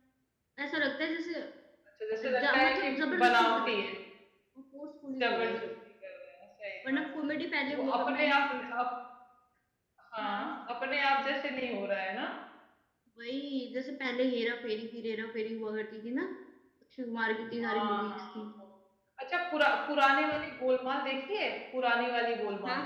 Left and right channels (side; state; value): both; identical; correlation 1.00